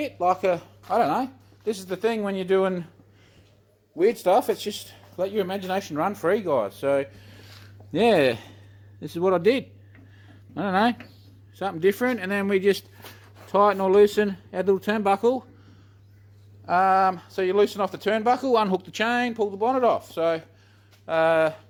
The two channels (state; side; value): identical; both; correlation 1.00